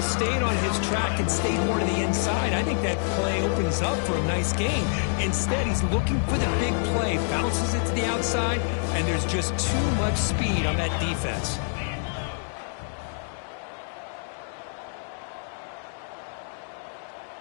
stayed on his track and stayed more to the inside, I think that play opens up for a nice gain. Instead, he's looking for the big play, bounces it to the outside, and there's just too much speed on that defense.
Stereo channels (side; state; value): right; silent; digital silence